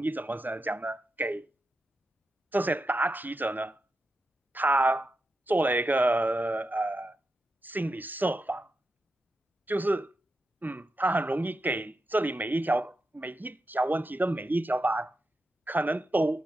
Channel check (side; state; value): both; normal; correlation 0.87